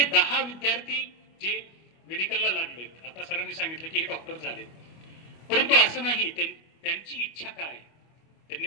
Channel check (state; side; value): late; right; 25 ms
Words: 10 विद्यार्थी जे मेडिकलला लागलेत, आता सरांनी सांगितलं की हे डॉक्टर झालेत, परंतु असं नाही, त्यांची इच्छा काय, त्यांनी